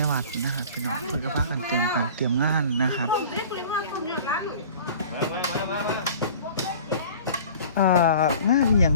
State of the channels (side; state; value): both; inverted; correlation -0.44